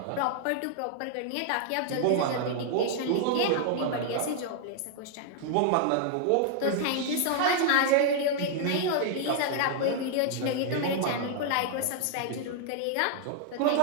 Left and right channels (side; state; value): both; different; correlation 0.00